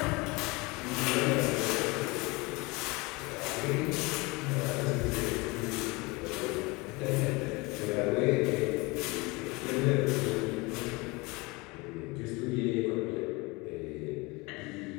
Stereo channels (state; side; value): quieter; right; 25.2 dB